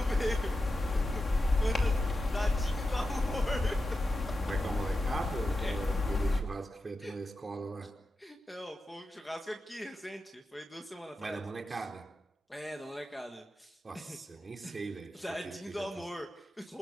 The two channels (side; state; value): both; normal; correlation 0.90